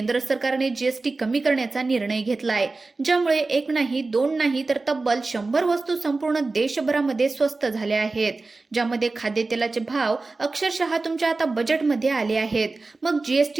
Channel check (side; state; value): left; quieter; 3.6 dB